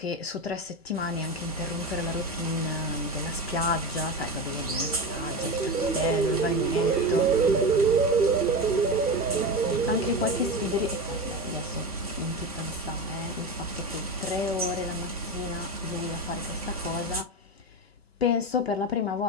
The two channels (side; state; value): both; normal; correlation 0.21